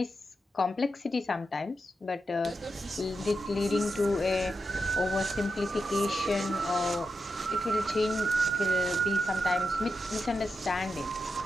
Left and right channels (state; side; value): normal; both; correlation 0.87